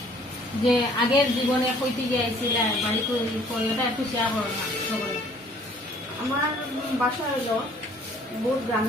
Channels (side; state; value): both; normal; correlation 0.57